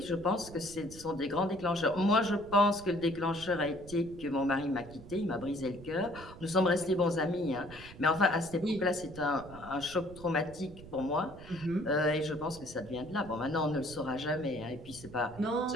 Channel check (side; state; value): right; noise; rumble, 17 dB below the sound